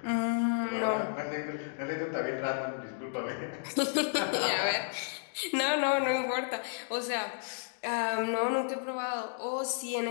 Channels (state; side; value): silent; right; digital silence